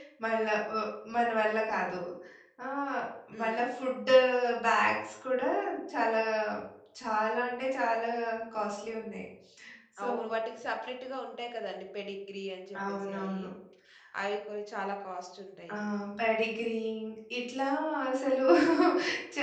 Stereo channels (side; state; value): both; identical; correlation 1.00